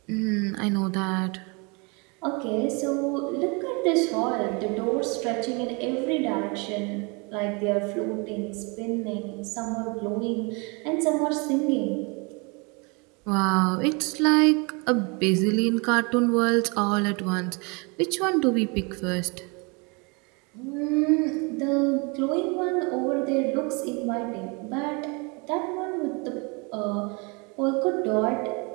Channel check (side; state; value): left; quieter; 30.7 dB